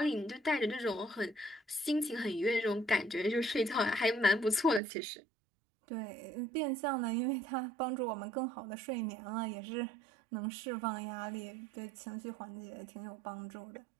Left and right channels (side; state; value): left; drops out; at 4.8 s